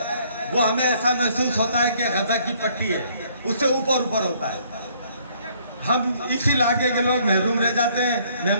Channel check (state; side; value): inverted; both; correlation -0.64